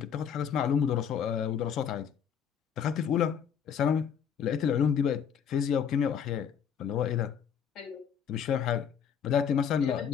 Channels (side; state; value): right; quieter; 7.9 dB